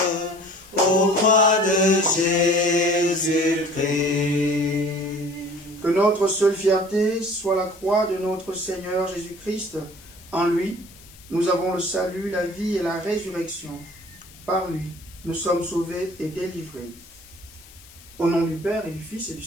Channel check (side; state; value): left; noise; hiss, 22 dB below the sound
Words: aux croix de Jésus-Christ. Que notre seule fierté soit la croix de notre Seigneur Jésus-Christ. En lui, nous avons le salut, la vie et la résurrection. Par lui, nous sommes sauvés et délivrés. Au nom du Père et du Fils et du